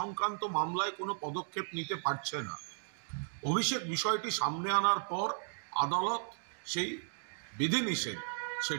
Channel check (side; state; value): left; silent; digital silence